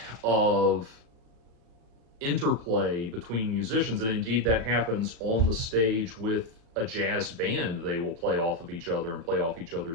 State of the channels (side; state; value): left; late; 36 ms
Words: of interplay between musicians, and indeed that happens on the stage with a jazz band. They will play off of each other and play off each